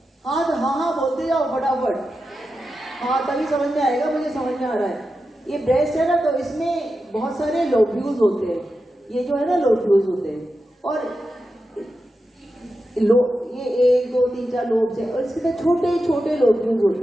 हाँ तो हाँ बोलते जाओ फटाफट, हाँ तभी समझ में आएगा, मुझे समझ में आ रहा है। ये ब्रेस्ट है ना, तो इसमें बहुत सारे लोब्यूल्स होते हैं, ये जो है ना लोब्यूल्स होते हैं, और ये 1, 2, 3, 4 लोब्स है, और इसके छोटे छोटे लोब्यूल्स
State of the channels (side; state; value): both; normal; correlation 0.90